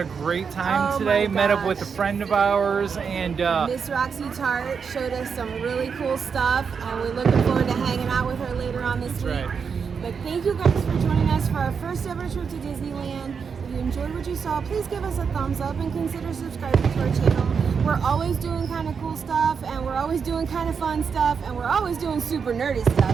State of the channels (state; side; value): quieter; left; 6.1 dB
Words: great time Oh today. my Met up with a gosh. friend of ours, and Miss Roxy Tart showed us some really cool stuff, and we're looking forward to hanging out with her later on this week. right. But thank you guys for joining us for our first ever trip to Disneyland. If you enjoyed what you saw, please give us a thumbs up and consider subscribing to our channel. We're always doing kind of cool stuff, and we're always doing kind of fun stuff, and we're always doing super nerdy